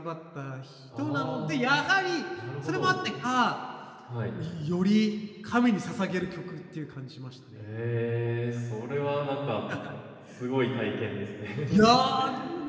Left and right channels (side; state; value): both; identical; correlation 1.00